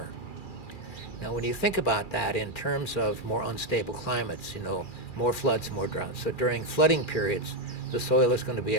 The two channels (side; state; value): right; late; 2.4 ms